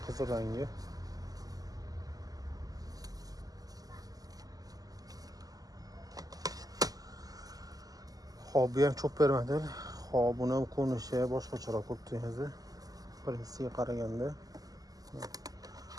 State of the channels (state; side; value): late; left; 0.17 ms